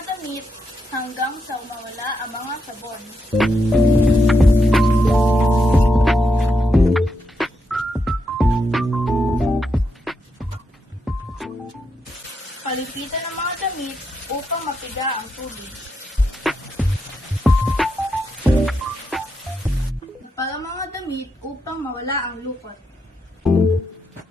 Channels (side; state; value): both; normal; correlation 0.82